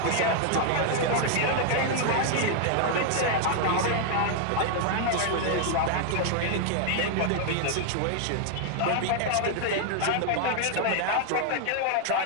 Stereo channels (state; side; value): different; both; correlation 0.00